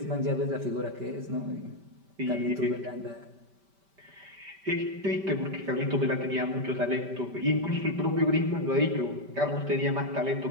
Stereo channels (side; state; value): left; late; 5.1 ms